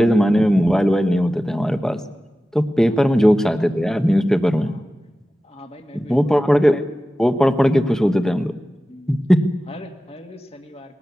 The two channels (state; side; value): normal; both; correlation 0.95